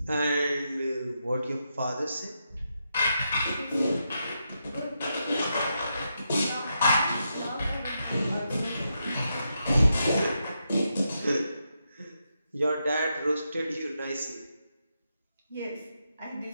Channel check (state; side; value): inverted; both; correlation -0.84